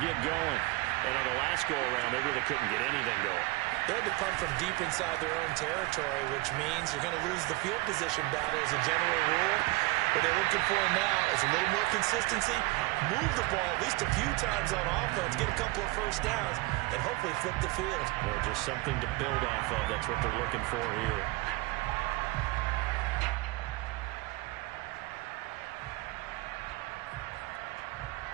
get going. And on the last go-around, they really couldn't get anything going. They had to punt from deep inside their own territory, which means you're going to lose the field position battle as a general rule. What they're looking for now is a little more consistency, move the ball at least a few times on offense, get a couple of first downs, and hopefully flip the field. Yeah, just something to build off of. That's what they're looking for here.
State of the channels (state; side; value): quieter; left; 21.6 dB